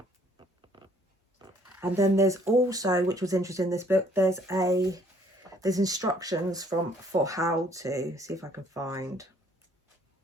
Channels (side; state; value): both; normal; correlation 0.61